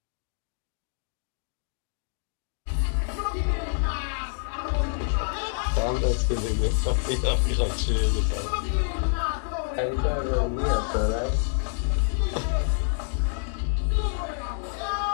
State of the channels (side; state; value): right; silent; digital silence